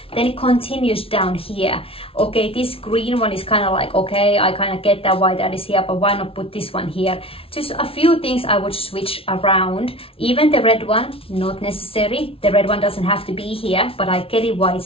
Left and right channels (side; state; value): right; late; 0.26 ms